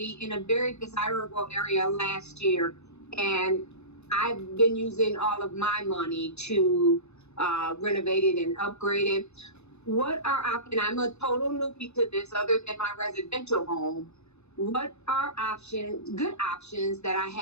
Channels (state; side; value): late; right; 0.81 ms